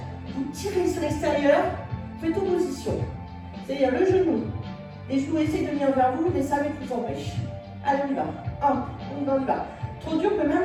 Vous tirez sur l'extérieur, faites opposition. C'est-à-dire le genou, les genoux essaient de venir vers vous, les serviettes vous empêchent. Allez, on y va. 1, on y va. Trop dur, on peut même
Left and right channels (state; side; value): identical; both; correlation 1.00